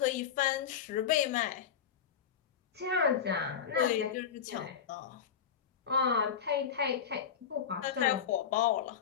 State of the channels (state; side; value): quieter; right; 7.9 dB